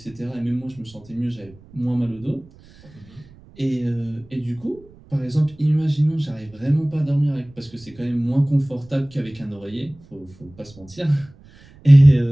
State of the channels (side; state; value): right; noise; rumble, 24 dB below the sound